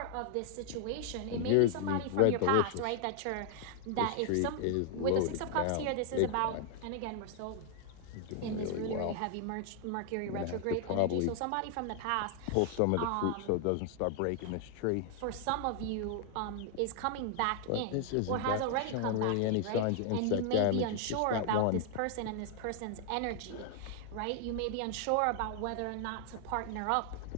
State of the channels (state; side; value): different; both; correlation 0.00